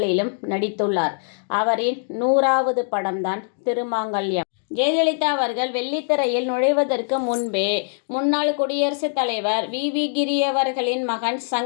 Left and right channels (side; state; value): right; silent; digital silence